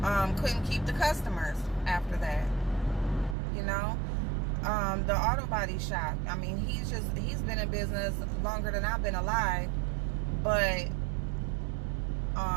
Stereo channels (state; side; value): drops out; left; at 3.4 s